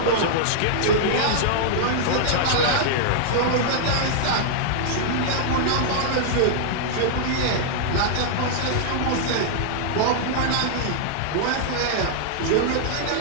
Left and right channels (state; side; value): different; both; correlation -0.01